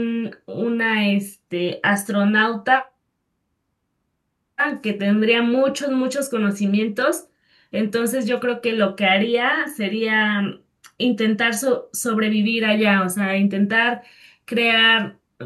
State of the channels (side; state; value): both; identical; correlation 1.00